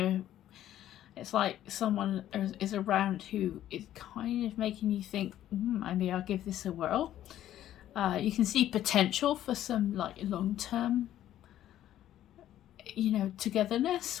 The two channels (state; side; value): quieter; right; 12.3 dB